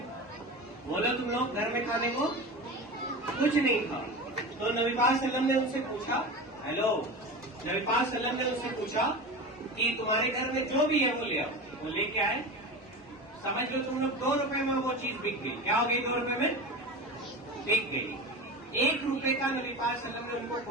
बोलो तुम लोग, घर में खाने को कुछ नहीं था। तो नबी पाक सल्लम ने उनसे पूछा, हेलो, नबी पाक सल्लम ने उनसे पूछा कि तुम्हारे घर में जो भी है वो ले आओ। वो लेके आए। समझ लो तुम लोग 2 रुपए में वो चीज बिक गई। क्या हो गई? 2 रुपए में बिक गई। 1 रुपए का नबी पाक सल्लम ने उनको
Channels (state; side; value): normal; both; correlation 0.28